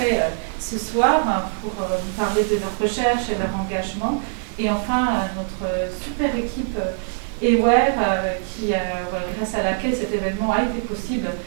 ce soir pour nous parler de leur recherche et leur engagement. Et enfin, notre super équipe Ewer, grâce à laquelle cet événement a été possible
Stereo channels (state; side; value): silent; left; digital silence